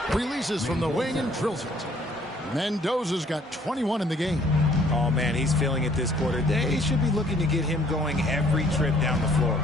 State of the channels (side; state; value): both; normal; correlation 0.60